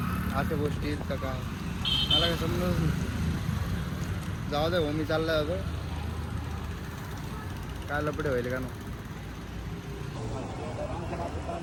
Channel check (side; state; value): both; identical; correlation 1.00